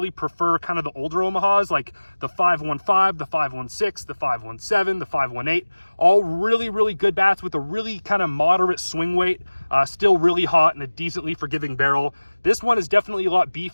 prefer kind of the older Omahas, like the 515, the 516, the 517, the 518. All really, really good bats with a really kind of moderate swing weight. Still really hot and a decently forgiving barrel. This one is definitely a lot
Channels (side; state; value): both; inverted; correlation -1.00